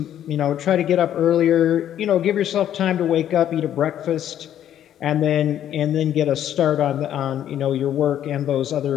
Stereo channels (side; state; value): right; quieter; 10.8 dB